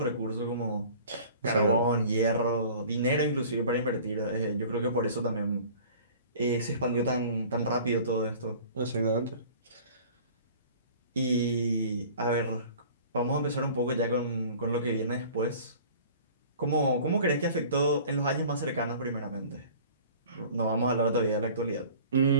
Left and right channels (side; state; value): both; inverted; correlation -0.45